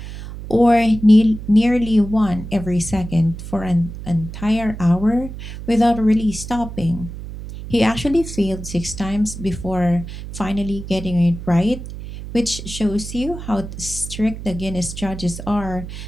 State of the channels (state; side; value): noise; right; hum, 10 dB below the sound